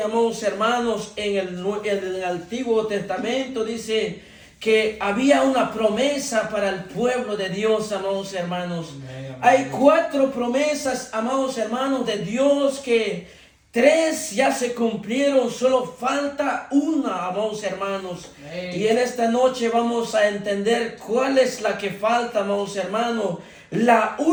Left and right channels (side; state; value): both; identical; correlation 1.00